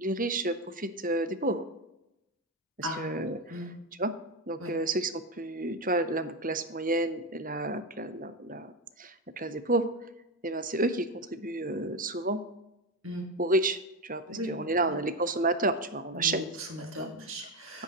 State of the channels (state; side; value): normal; both; correlation 0.14